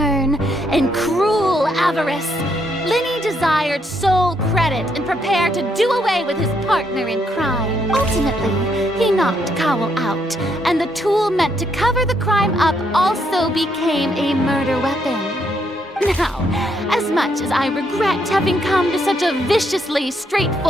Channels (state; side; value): normal; both; correlation 0.75